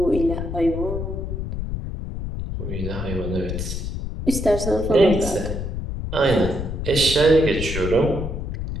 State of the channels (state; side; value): noise; left; rumble, 4 dB below the sound